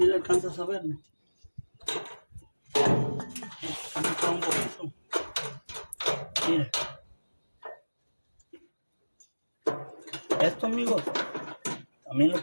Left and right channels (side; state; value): both; inverted; correlation -1.00